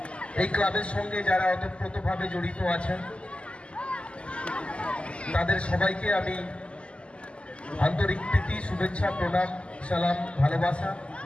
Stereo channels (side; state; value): right; late; 0.055 ms